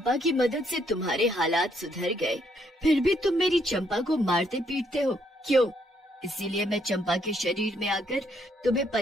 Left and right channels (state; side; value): normal; both; correlation 0.72